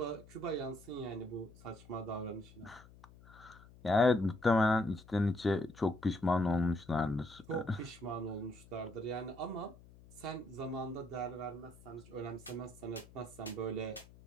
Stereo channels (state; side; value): noise; left; hum, 22 dB below the sound